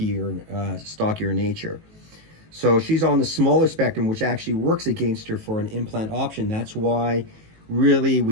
nature. So she's on the smaller spectrum, which actually works against her for an implant option. That's why really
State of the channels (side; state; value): left; late; 18 ms